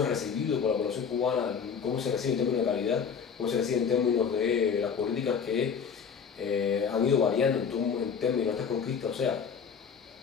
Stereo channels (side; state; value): right; quieter; 6.6 dB